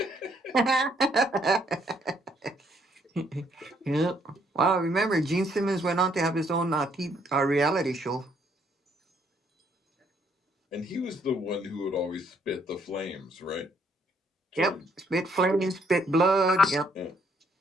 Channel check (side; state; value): both; normal; correlation 0.68